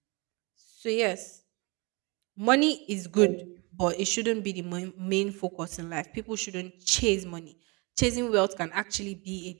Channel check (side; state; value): left; quieter; 28.6 dB